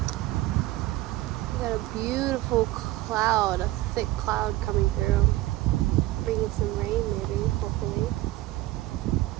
We got a beautiful cloud, a thick cloud coming through. Bringing some rain maybe, hopefully.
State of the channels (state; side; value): quieter; left; 17.0 dB